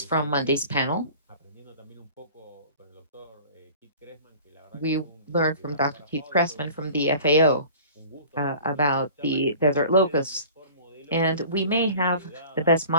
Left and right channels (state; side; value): inverted; both; correlation -0.44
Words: from Monday's panel. We learned from Dr. Keith Cressman from the FAO about the desert locusts. And we may have the best